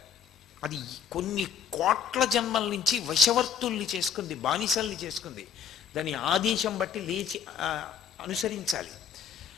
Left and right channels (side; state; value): right; quieter; 6.9 dB